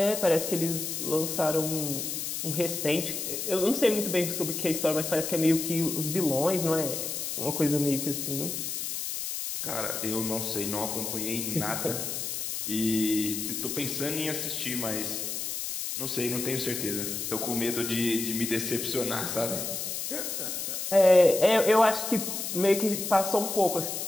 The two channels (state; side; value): noise; left; hiss, 4 dB below the sound